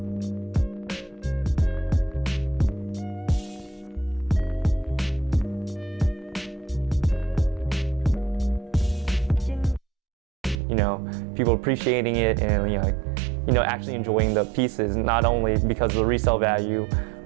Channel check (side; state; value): left; drops out; at 10.6 s